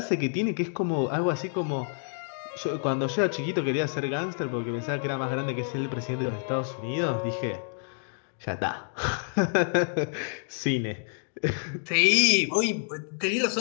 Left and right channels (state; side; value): silent; right; digital silence